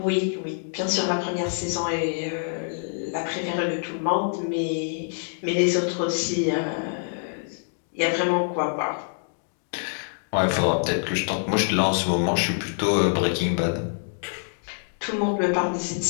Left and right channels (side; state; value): right; silent; digital silence